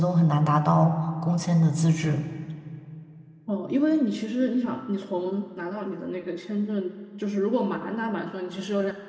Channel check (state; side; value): identical; both; correlation 1.00